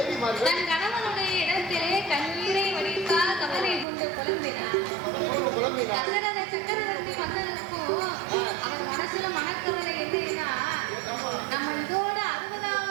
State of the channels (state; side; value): drops out; left; at 3.9 s